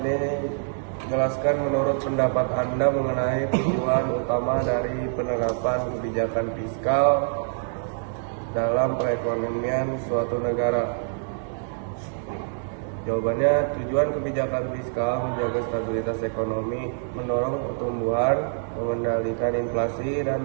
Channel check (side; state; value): left; silent; digital silence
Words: jelaskan menurut pendapat Anda mengenai tujuan utama dari penerapan kebijakan fiskal dalam perekonomian suatu negara. Jawabannya, tujuan kebijakan fiskal menjaga stabilitas ekonomi, mendorong pertumbuhan, mengendalikan inflasi dan